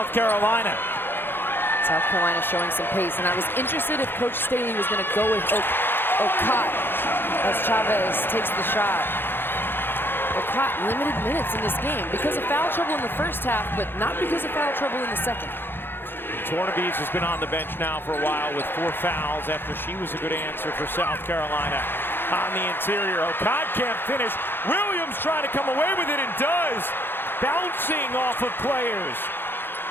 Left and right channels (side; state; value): right; late; 0.10 ms